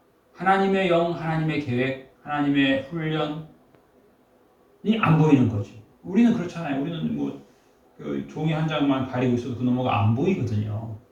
하나님의 영, 하나님의 계획, 하나님의 훈련이 안 보이는 거지. 우리는 그렇잖아요. 우리는 뭐 그 종이 한 장만 가리고 있어도 그 너머가 안 보이거든요.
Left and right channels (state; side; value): identical; both; correlation 1.00